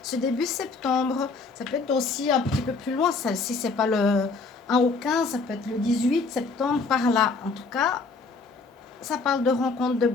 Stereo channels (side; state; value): right; quieter; 4.1 dB